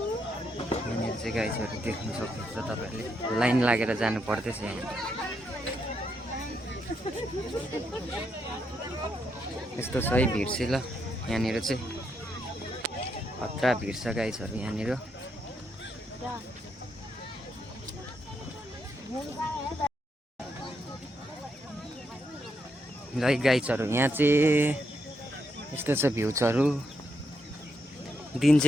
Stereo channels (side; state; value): both; normal; correlation 0.80